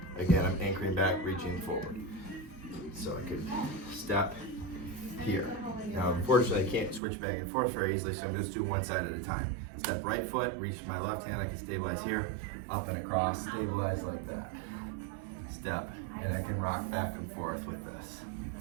Again, I'm anchoring back, reaching forward. So I could step here. Now, unfortunately, I can't switch back and forth very easily, so I'm just doing one side at a time. Step right foot, reach my left hand, I can stabilize here, up and across, stabilize like that. Step, and I can rock back and forth with this.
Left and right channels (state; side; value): drops out; left; at 7.0 s